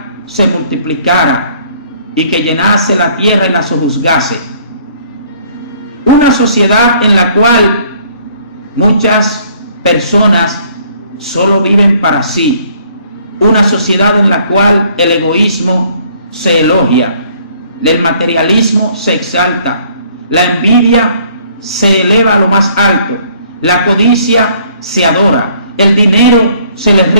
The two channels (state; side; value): inverted; both; correlation -0.60